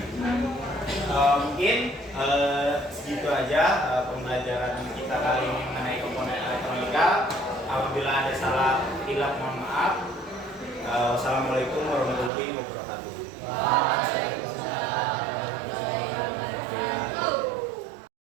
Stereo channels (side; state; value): left; drops out; at 12.3 s